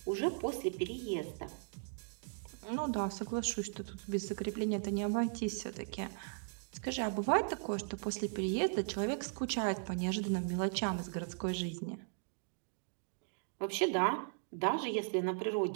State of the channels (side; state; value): left; silent; digital silence